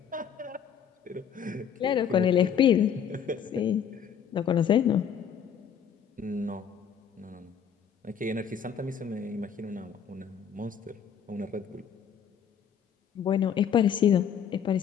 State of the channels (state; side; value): quieter; right; 8.0 dB